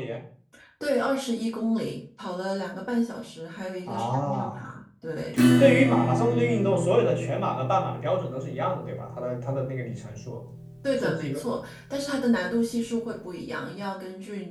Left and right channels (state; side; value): identical; both; correlation 1.00